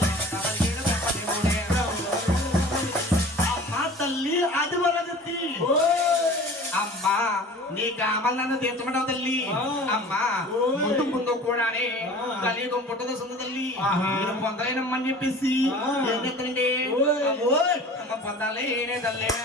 నీ కామల్ నన్ను తీర్చమంటావు తల్లి అమ్మా ముందు ముందు కూడానే కలియుగం పుట్టదు సుంద తల్లి నేను పొందలేనమ్మని చెప్పేసి ఏం చెప్తానండి అమ్మ పొందాలేనే తల్లి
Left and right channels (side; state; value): both; normal; correlation 0.42